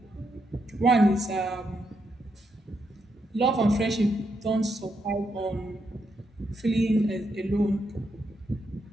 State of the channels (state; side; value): normal; both; correlation 0.80